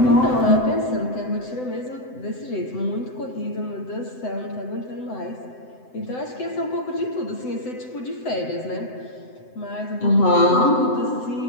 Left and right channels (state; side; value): late; right; 7.9 ms